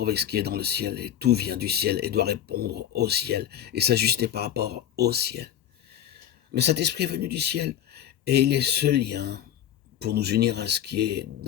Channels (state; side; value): quieter; right; 10.4 dB